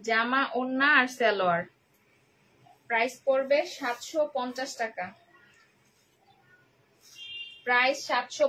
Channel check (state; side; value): identical; both; correlation 1.00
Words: ওড়না আর সালোয়ার। প্রাইস পড়বে 750 টাকা। প্রাইস